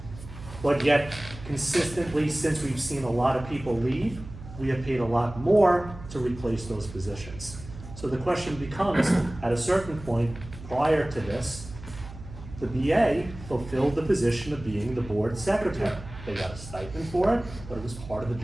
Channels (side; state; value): right; noise; hum, 15 dB below the sound